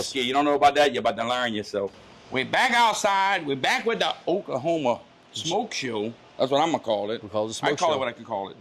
You don't know about that? You're about to learn yourself. We're back outside. We're back with the Oklahoma Smoke Show. That's what I'm going to call it. We call it the smoke I call show. it what I can call it.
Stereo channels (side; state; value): both; identical; correlation 1.00